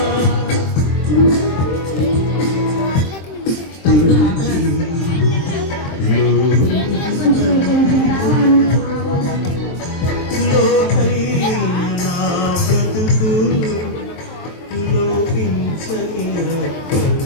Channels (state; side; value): late; right; 23 ms